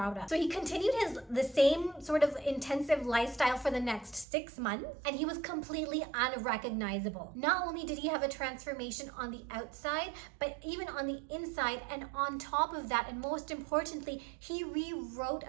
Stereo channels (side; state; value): left; drops out; at 4.2 s